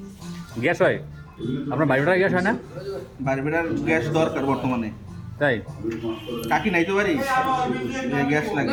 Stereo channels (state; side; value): identical; both; correlation 1.00